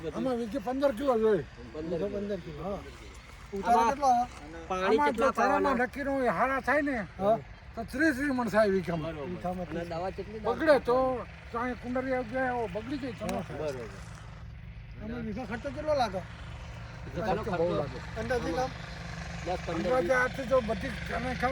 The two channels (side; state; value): both; identical; correlation 1.00